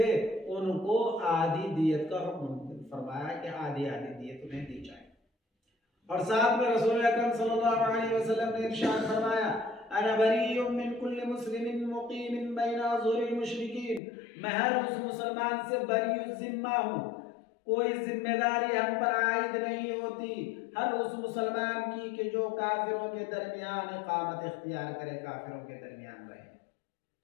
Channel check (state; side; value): drops out; right; at 14.0 s